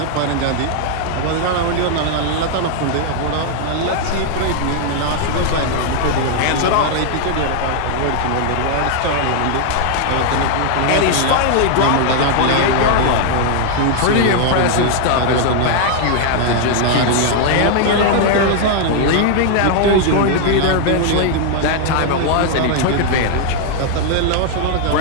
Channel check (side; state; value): both; different; correlation 0.00